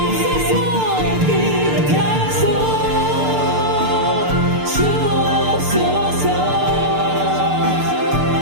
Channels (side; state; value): left; late; 6.7 ms